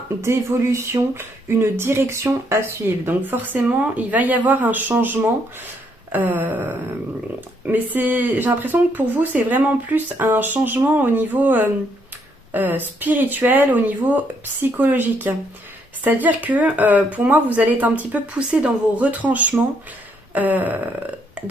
d'évolution, une direction à suivre. Donc forcément, il va y avoir un changement. Mais j'ai l'impression que pour vous, c'est vraiment plus un changement au niveau spirituel, au niveau psychologique. C'est-à-dire que pour moi, vous allez être un petit peu poussé dans vos retranchements.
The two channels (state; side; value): normal; both; correlation 0.72